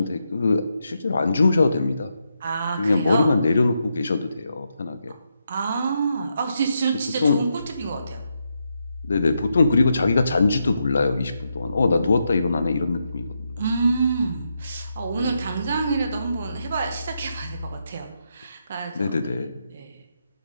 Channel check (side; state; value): both; inverted; correlation -0.82